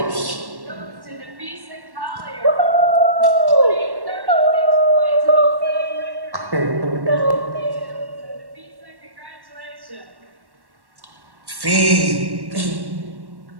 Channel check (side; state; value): left; late; 1.1 ms